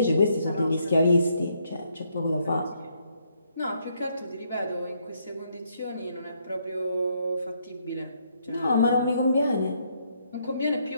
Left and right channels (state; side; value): inverted; both; correlation -0.73